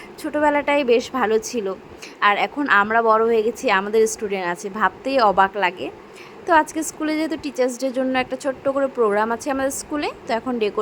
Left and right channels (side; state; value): both; identical; correlation 1.00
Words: ছোটোবেলাটাই বেশ ভালো ছিল। আর এখন আমরা বড় হয়ে গেছি, আমাদের স্টুডেন্ট আছে, ভাবতেই অবাক লাগে। তো আজকে স্কুলে যেহেতু টিচার্স ডের জন্য একটা ছোট্ট করে প্রোগ্রাম আছে আমাদের স্কুলে, তো এখন